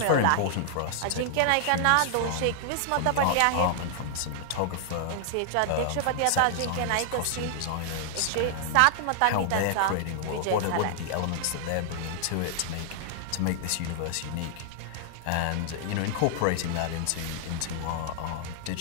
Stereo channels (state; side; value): different; both; correlation 0.00